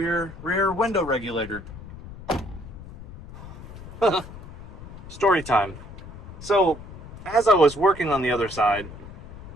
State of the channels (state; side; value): noise; left; rumble, 15 dB below the sound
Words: window regulator. Story time. So, as I was working on the other side,